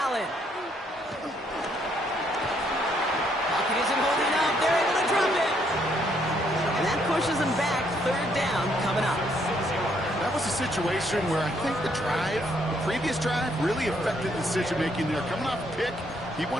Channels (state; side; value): normal; both; correlation 0.70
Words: Allen. Pocket isn't holding up. They're able to drop it. And that pushes them back. 3rd down coming up. That was a situation where I think the previous drive, really affected decision-making there. Coming off a pick, he